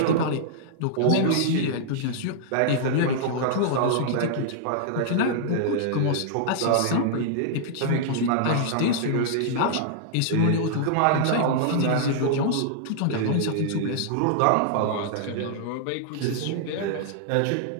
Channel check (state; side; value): different; both; correlation -0.01